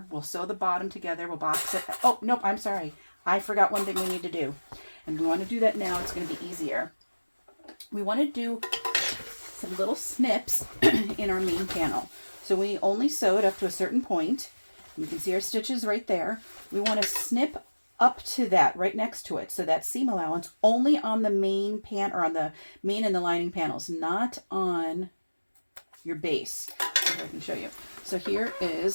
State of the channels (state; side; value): inverted; both; correlation -1.00